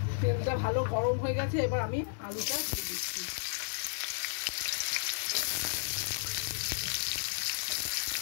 তেলটা ভালো গরম হয়ে গেছে, এবার আমি আলুটা দিয়ে দিচ্ছি।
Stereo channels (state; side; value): silent; right; 56 dB below the other